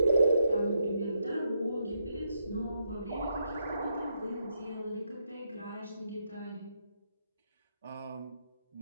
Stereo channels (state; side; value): inverted; both; correlation -0.80